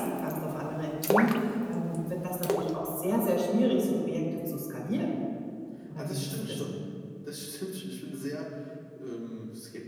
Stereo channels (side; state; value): both; identical; correlation 1.00